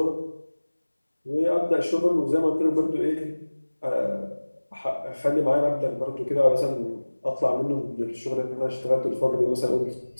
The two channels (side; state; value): both; inverted; correlation -1.00